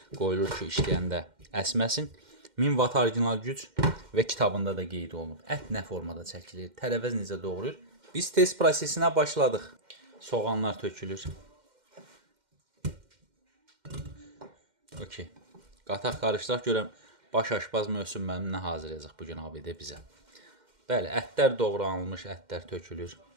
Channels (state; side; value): late; left; 2.1 ms